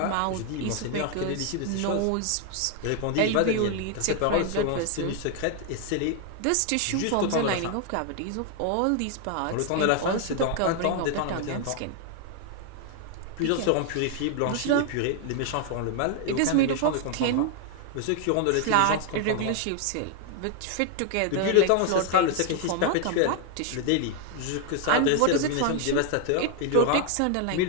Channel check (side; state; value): both; different; correlation 0.00